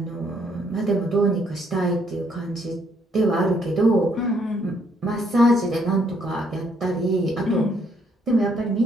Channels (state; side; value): normal; both; correlation 0.69